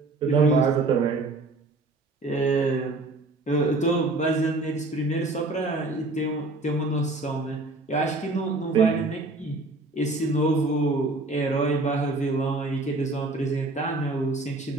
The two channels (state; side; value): quieter; left; 3.1 dB